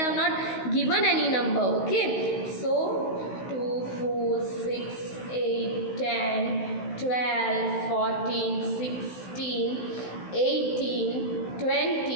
not given any number. Okay, so 2, 4, 6, 8, 10, 12, 14, 16, 18,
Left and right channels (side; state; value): right; late; 16 ms